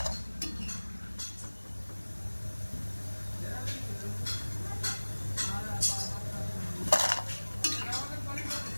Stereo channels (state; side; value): inverted; both; correlation -1.00